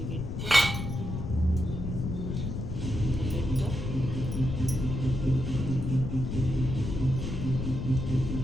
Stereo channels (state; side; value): noise; left; rumble, 4 dB below the sound